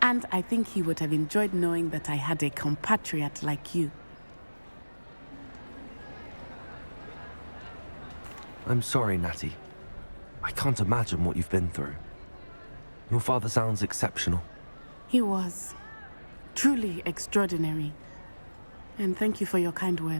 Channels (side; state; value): both; inverted; correlation -1.00